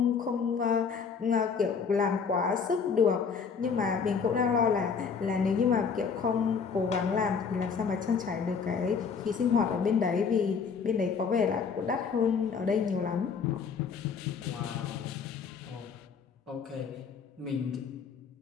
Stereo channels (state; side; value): quieter; right; 5.9 dB